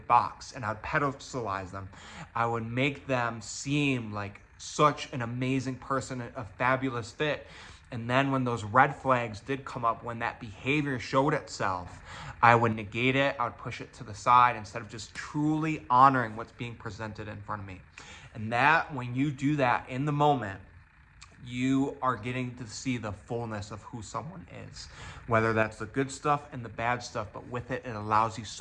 box and I'd pedestalize them. I would make them seem like such an amazing person, a fabulous fit. And then when those red flags did come up, when that behavior showed itself, I would negate it. I would push it to the side instead of just truly honoring what's being presented in front of me. And that, when you do that in the moment, you are getting to see the fullness of who someone is, whether that's the good stuff and the bad stuff, but with it, it allows you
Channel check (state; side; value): identical; both; correlation 1.00